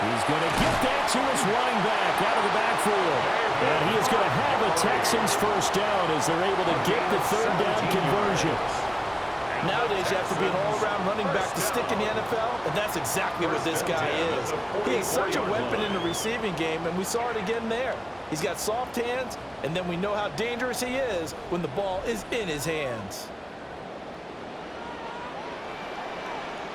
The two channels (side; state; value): both; identical; correlation 1.00